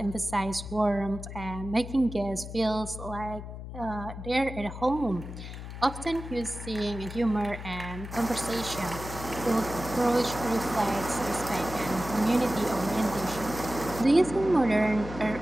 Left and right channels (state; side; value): noise; left; hum, 10 dB below the sound